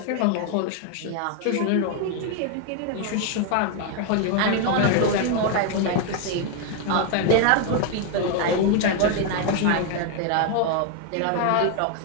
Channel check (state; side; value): different; both; correlation 0.01